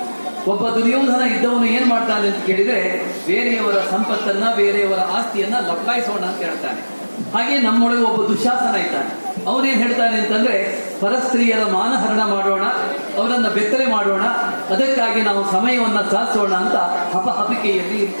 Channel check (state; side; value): inverted; both; correlation -1.00